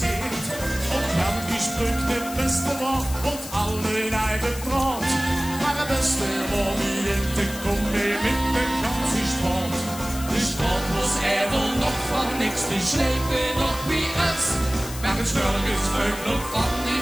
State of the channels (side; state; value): left; noise; hiss, 12 dB below the sound